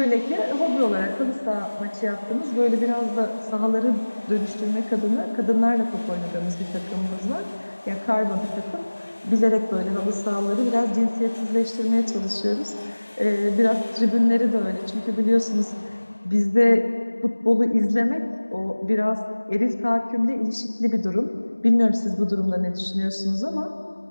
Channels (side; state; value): both; inverted; correlation -1.00